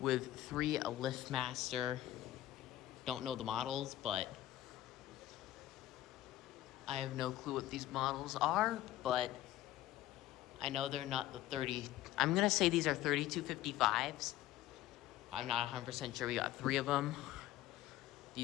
3 LiftMaster. Don't know the models, but I have no clue what these models are, but I know they're not the 30. I'm gonna say these are 3255s. I'm not 100% sure. We got 3 of them.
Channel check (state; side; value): quieter; right; 14.5 dB